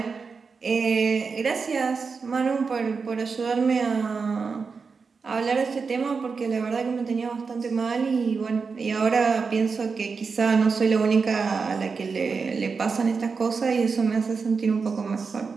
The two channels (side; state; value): left; quieter; 5.1 dB